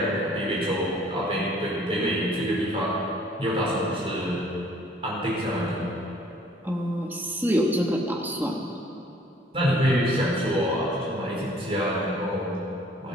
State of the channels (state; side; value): normal; both; correlation 0.56